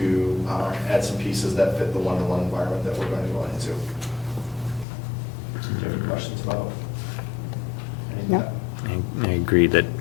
add some pieces that fit the one-to-one environment that we're going to go into. Do you have any questions about any of No. that? I agree that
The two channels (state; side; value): drops out; right; at 4.9 s